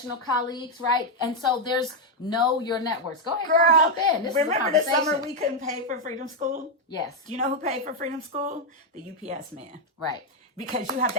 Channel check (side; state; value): both; normal; correlation 0.01